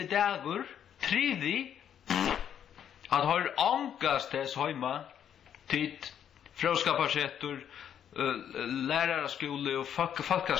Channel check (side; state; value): right; quieter; 9.3 dB